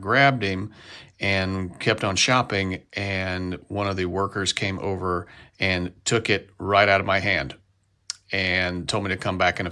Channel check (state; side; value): identical; both; correlation 1.00